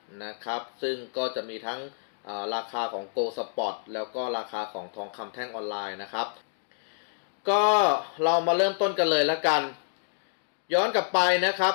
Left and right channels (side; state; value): right; silent; digital silence